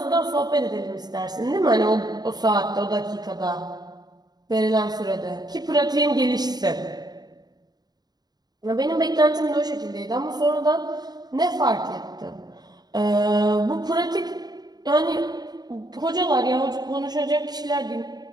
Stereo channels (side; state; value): left; late; 0.19 ms